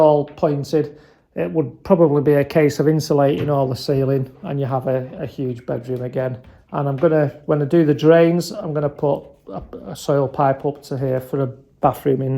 pointed, it would probably be a case of insulating all the ceiling, and you have a huge bedroom again. And I'm going to, when I do the drains, I'm going to put a soil pipe up to here for a bathroom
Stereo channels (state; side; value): identical; both; correlation 1.00